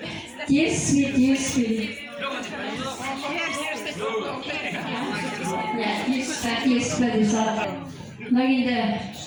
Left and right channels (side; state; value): both; identical; correlation 1.00